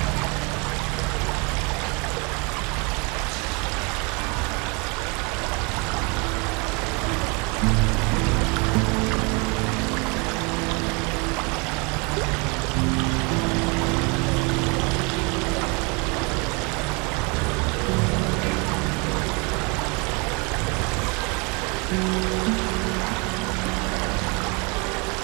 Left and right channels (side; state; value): left; quieter; 30.7 dB